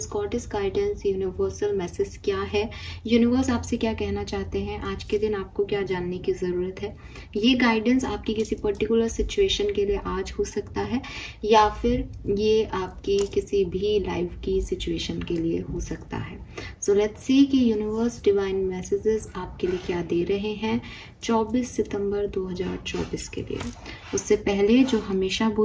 goddess guidance, universal message क्या है। यूनिवर्स आपसे क्या कहना चाहते हैं, आज के दिन आपको क्या जानने की ज़रूरत है। ये गाइडेंस आपकी किसी पर्टिकुलर सिचुएशन के लिए आज हो सकता है या फिर ये आपकी किसी भी लाइफ की सिचुएशन के लिए हो सकता है। सो लेट्स सी कि यूनिवर्स डिवाइन मैसेजेस आपके लिए क्या दे रहे हैं 24 सितंबर 2024 के लिए। उससे पहले जो हमेशा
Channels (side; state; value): both; identical; correlation 1.00